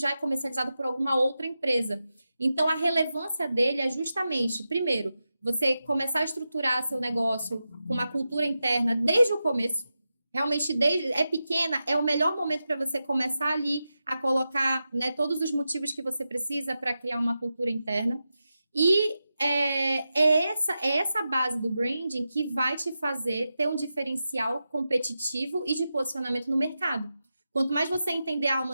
é comercializado por alguma outra empresa. Então, a relevância dele é justamente, primeiro, você começar a estruturar seu negócio com uma cultura interna desde o começo. Realmente, é pequena, é o melhor momento para você começar ali a colocar, né, todos os motivos que você precisa para criar uma cultura interna. E é essa base do branding que vai te fazer ter um diferencial competitivo e de posicionamento no mercado. Quanto mais você entender a alma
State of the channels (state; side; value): inverted; both; correlation -0.91